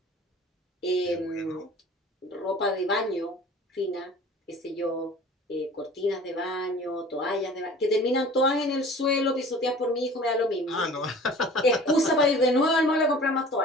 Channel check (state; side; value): normal; both; correlation 0.44